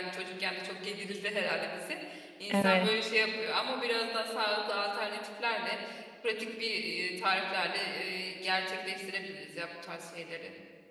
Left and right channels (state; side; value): identical; both; correlation 1.00